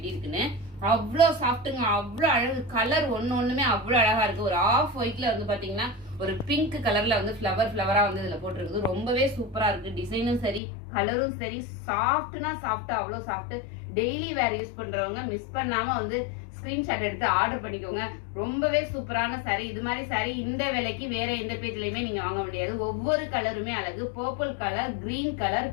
இருக்குன்னு. அவ்வளோ சாஃப்ட்டுங்க, அவ்வளோ அழகு. கலர் ஒண்ணுமே அவ்வளோ அழகா இருக்கு. ஒரு ஆஃப் ஒயிட்ல வந்து பாத்தீங்கன்னா ஒரு பிங்க் கலர்ல வந்து ஃபிளவரா வந்து இதுல போட்டிருக்குது. ரொம்பவே சூப்பரா இருக்கு. டிசைனும் சரி, கலரும் சரி, சாஃப்ட்னா சாஃப்ட், அவ்வளோ சாஃப்ட். டெய்லி வேர் யூஸ் பண்றவங்க மிஸ் பண்ணாம வந்து ஸ்கிரீன்ஷாட் எடுத்து ஆர்டர் பண்ணிக்கோங்க. ரொம்பவே சூப்பரான சாரி. இது மாதிரி சாரி இந்த விலைக்கு வேற எந்த பேஜ்லயுமே நீங்க வாங்க முடியாது. ஒவ்வொரு கலருமே அழகு. Purple colour, green colour,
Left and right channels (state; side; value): drops out; right; at 10.6 s